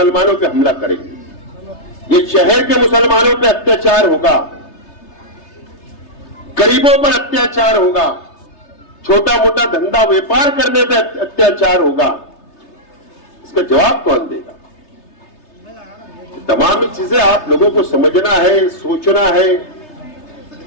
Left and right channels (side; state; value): right; late; 3.3 ms